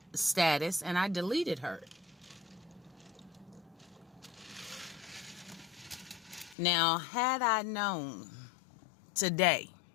status, and I deleted her. Now, had I known today,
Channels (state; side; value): drops out; right; at 6.6 s